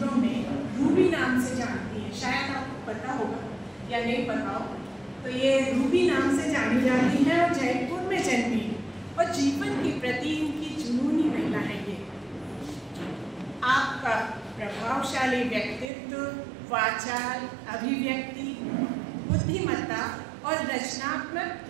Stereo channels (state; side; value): drops out; left; at 15.9 s